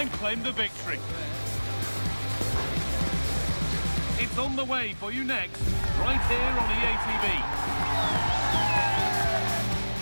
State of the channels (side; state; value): both; inverted; correlation -1.00